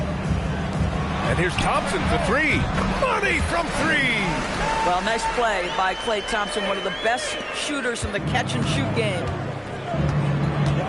And here's Thompson for three. Money from three. Well, nice play by Klay Thompson, one of the best shooters in the catch-and-shoot game.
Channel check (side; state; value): both; identical; correlation 1.00